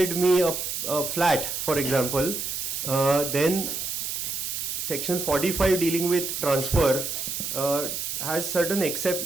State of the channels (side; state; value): right; noise; hiss, 4 dB below the sound